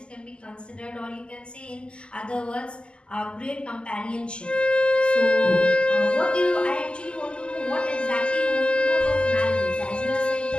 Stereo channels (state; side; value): late; right; 0.050 ms